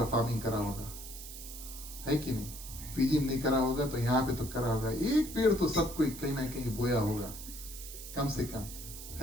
फार्मिंग करा होगा, है कि नहीं? पीजी नहीं करा होगा तो यहाँ पे तो करा होगा, एक पेड़ तो सब कोई कहीं ना कहीं बोया होगा कम से कम,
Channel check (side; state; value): right; noise; hiss, 12 dB below the sound